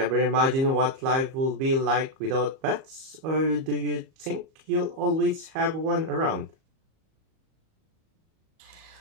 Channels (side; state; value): left; late; 37 ms